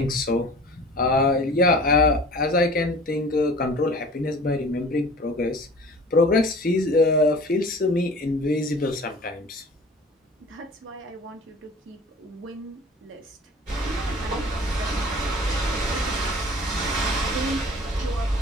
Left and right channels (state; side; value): normal; both; correlation 0.44